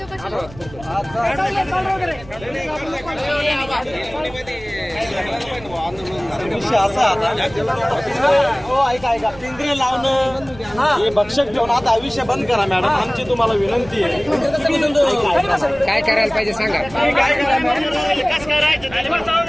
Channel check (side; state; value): right; noise; rumble, 19 dB below the sound